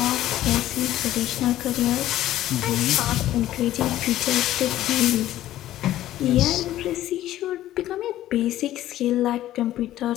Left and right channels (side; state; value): right; quieter; 13.8 dB